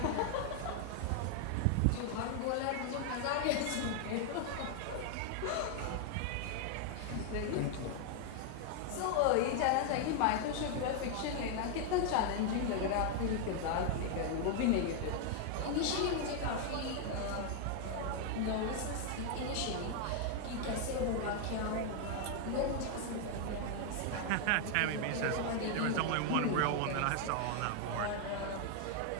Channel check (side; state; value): both; different; correlation 0.00